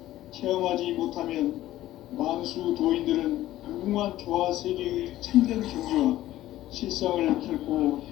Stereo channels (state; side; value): quieter; right; 14.7 dB